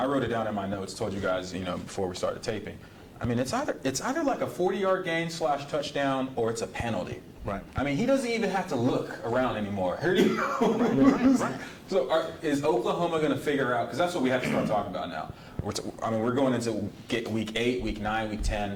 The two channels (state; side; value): identical; both; correlation 1.00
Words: wrote it down in my notes, told you guys, before we started taping. I mean, it's either like a 40-yard gain / touchdown or it's a penalty. Right. I mean, he doesn't even have to look around anymore. Right. So is Oklahoma going to figure out – because that's what we have to start talking about now. We're going into week 8, week 9, week